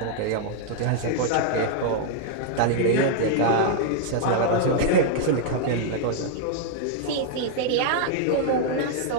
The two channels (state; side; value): different; both; correlation -0.01